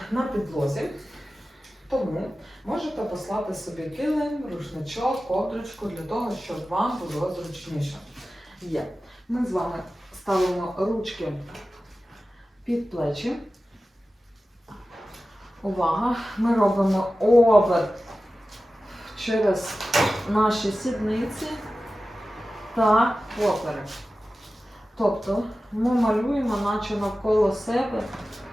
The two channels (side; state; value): both; normal; correlation 0.95